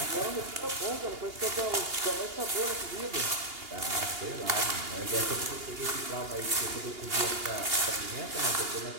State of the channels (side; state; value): left; late; 2.8 ms